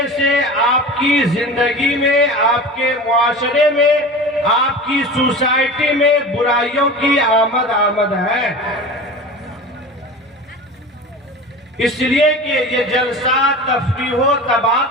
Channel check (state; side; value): normal; both; correlation 0.33